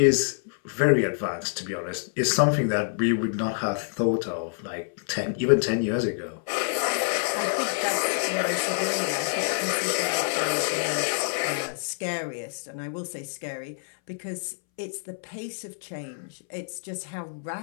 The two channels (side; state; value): right; silent; 60 dB below the other